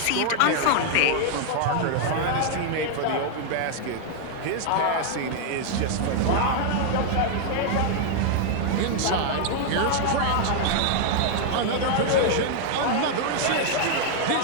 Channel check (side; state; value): both; different; correlation 0.00